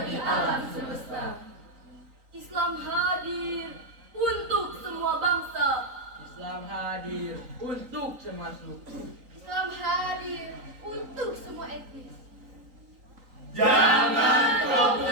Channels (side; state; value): left; late; 3.8 ms